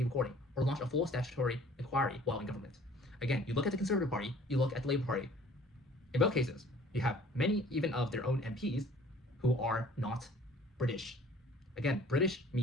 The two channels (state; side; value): normal; both; correlation 0.52